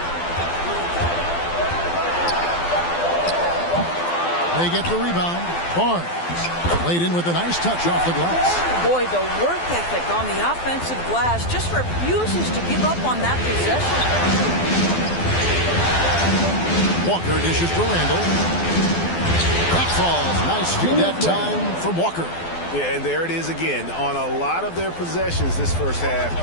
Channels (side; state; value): right; late; 12 ms